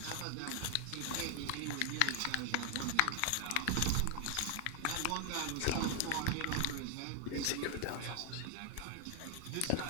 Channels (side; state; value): both; different; correlation 0.00